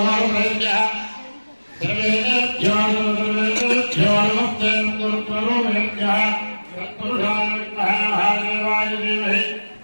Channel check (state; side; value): inverted; both; correlation -1.00